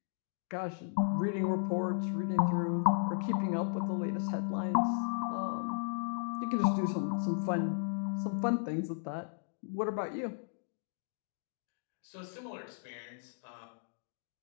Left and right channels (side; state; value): right; silent; digital silence